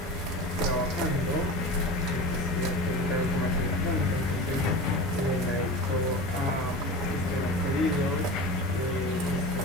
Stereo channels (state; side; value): normal; both; correlation 0.31